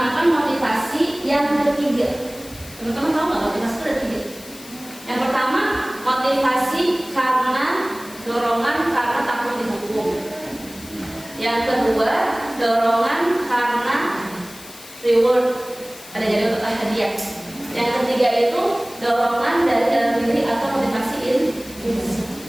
motivasi yang ketiga. Teman-teman tahu nggak motivasi itu ada tiga? Yang pertama, motivasi karena dorongan karena takut dihukum. Yang kedua, dorongan karena reward, ada jadi untuk hadiah. Yang ketiga itu dorongan dari dalam diri atau motivasi intrinsik.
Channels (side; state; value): left; noise; hiss, 18 dB below the sound